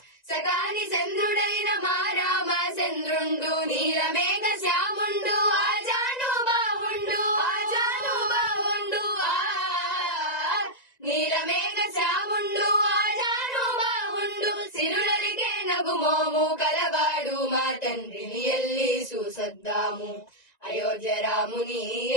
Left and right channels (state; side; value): late; right; 1.9 ms